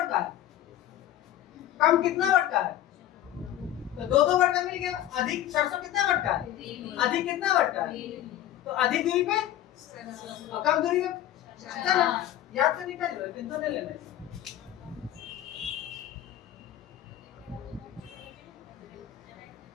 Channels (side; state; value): right; quieter; 12.5 dB